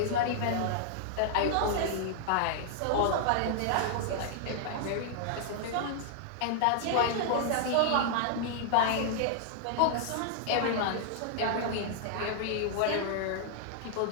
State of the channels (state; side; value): different; both; correlation -0.01